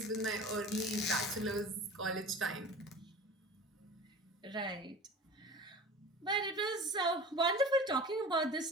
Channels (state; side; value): normal; both; correlation 0.37